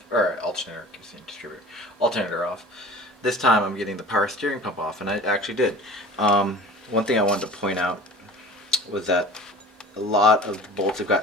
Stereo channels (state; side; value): normal; both; correlation 0.41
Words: or alternator, keep saying distributor, alternator off. This time I'm getting the power steering pump off, and I actually did. One thing I wanted to point out was that a lot of the bolts I